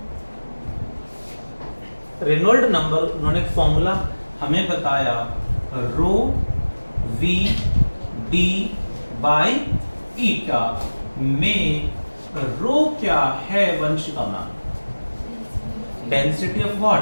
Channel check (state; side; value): inverted; both; correlation -1.00